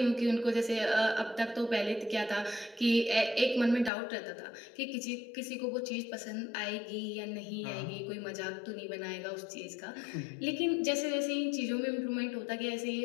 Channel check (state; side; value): drops out; right; at 3.9 s